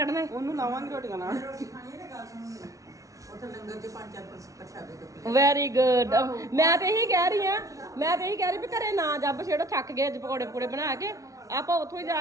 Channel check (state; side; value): late; left; 0.16 ms